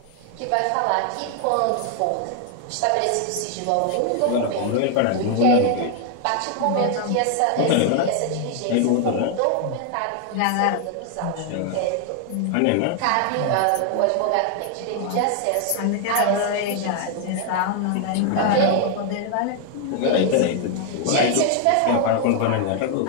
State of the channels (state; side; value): different; both; correlation 0.00